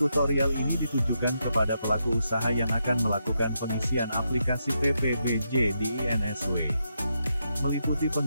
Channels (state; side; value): inverted; both; correlation -0.82